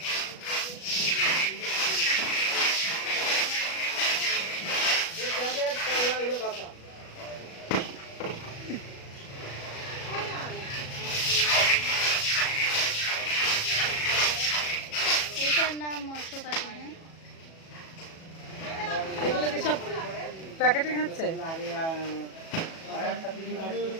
এটার নাম মৎস্যকাটি। হ্যাঁ, এগুলো কি সব প্যাকেটিং হচ্ছে?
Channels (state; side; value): late; right; 37 ms